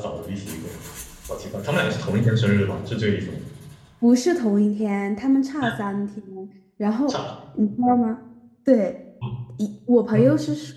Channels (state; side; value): identical; both; correlation 1.00